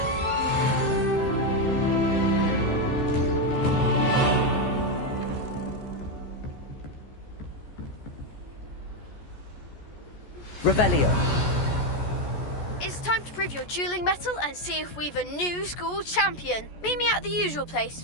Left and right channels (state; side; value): late; right; 14 ms